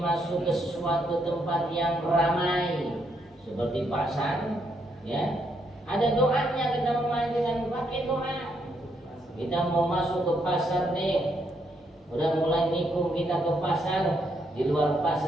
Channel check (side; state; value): both; normal; correlation 0.75